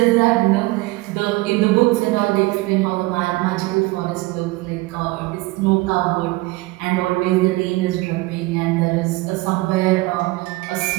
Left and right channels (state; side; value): quieter; left; 21.2 dB